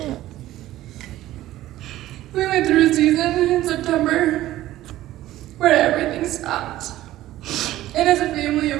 We went through a season in September where everything stopped. And as a family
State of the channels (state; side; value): quieter; left; 14.9 dB